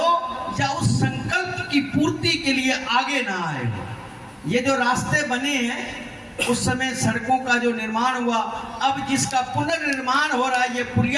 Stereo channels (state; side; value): identical; both; correlation 1.00